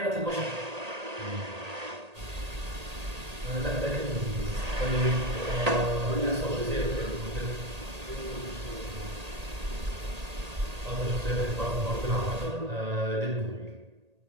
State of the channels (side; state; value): left; late; 1.8 ms